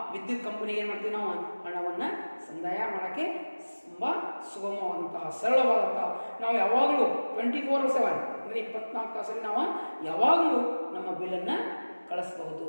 ವಿದ್ಯುತ್ ಕಂಪನಿಗೆ ಏನು ಮಾಡ್ತೀವಿ, ನಾವು ಹಣವನ್ನು ಸಂದಾಯ ಮಾಡೋಕ್ಕೆ ತುಂಬ ಸುಗಮವಾದಂತಹ ಸರಳವಾದಂತಹ, ನಾವು ಯಾವಾಗಲೂ 24/7 ಅಂದರೆ 24 ತಾಸಲ್ಲಿ ನಾವು ಯಾವಾಗಲೂ ನಮ್ಮ ಬಿಲ್ಲನ್ನು ಕಳಿಸ್ಬಹುದು,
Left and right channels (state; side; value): inverted; both; correlation -1.00